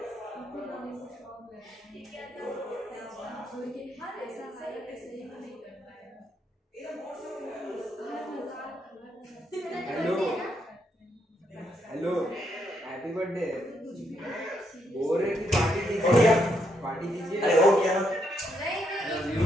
hello hello happy birthday. बोल रहे कि पार्टी दीजिए, पार्टी दीजिए। अरे हो गया ना।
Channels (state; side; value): normal; both; correlation 0.77